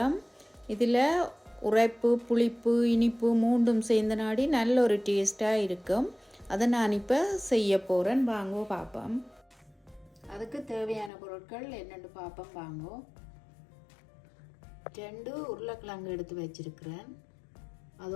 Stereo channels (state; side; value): drops out; right; at 11.1 s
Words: இதில் உரைப்பு, புளிப்பு, இனிப்பு மூண்டும் சேர்ந்த நாடி நல்ல ஒரு டேஸ்ட்டாக இருக்கும். அதை நான் இப்போ செய்ய போகிறேன். வாங்கோ பார்ப்போம். அதுக்கு தேவையான பொருட்கள் என்னென்னு பார்ப்போம். வாங்கோ. 2 உருளைக்கிழங்கு எடுத்து வச்சிருக்கிறேன்.